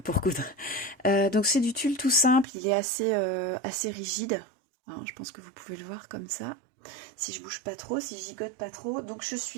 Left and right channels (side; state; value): left; drops out; at 2.5 s